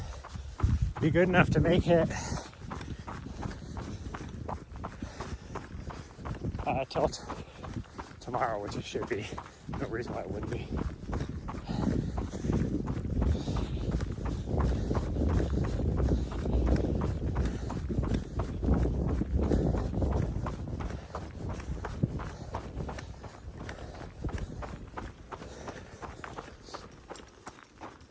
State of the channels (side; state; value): both; identical; correlation 1.00